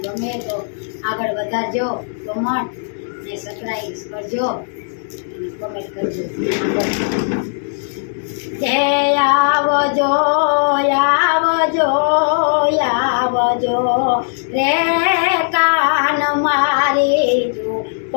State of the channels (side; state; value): right; silent; digital silence